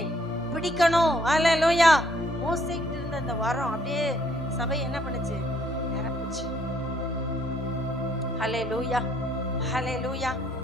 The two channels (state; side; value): normal; both; correlation 0.66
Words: பிடிக்கணும். அல்லேலூயா. மோசேக்கிட்ட இருந்த அந்த வரம் அப்படியே சபை என்ன பண்ணுச்சு? நிரப்புச்சு. அல்லேலூயா, அல்லேலூயா.